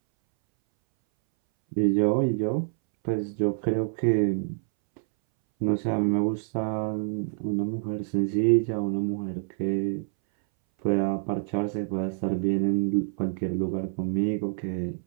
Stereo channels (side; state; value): left; silent; 60 dB below the other